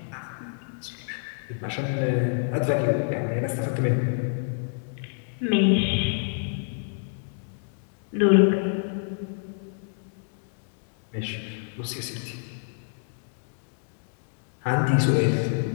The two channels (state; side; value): silent; right; digital silence